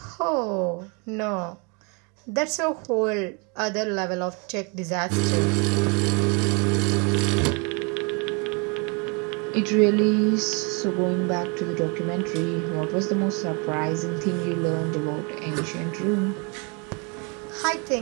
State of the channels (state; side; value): quieter; left; 33.0 dB